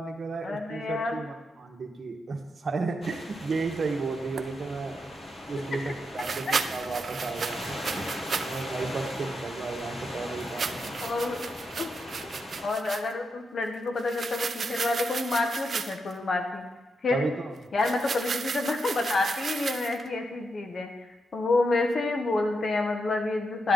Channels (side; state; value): both; normal; correlation 0.84